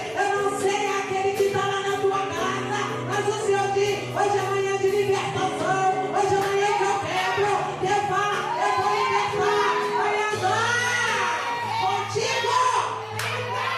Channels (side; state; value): both; identical; correlation 1.00